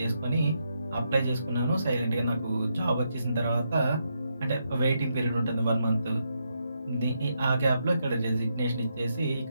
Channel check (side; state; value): both; inverted; correlation -0.80